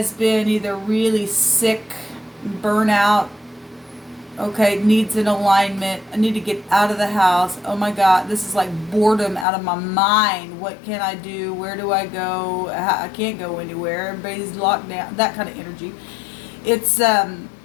been either really sick, burnout, okay, needs an alignment. I need to get out of the house. Oh my God, this is like boredom out of my mind. What can I do? Where do I go? I can't go anywhere. Everybody's locked down. That kind of energy. It's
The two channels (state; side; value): drops out; right; at 9.5 s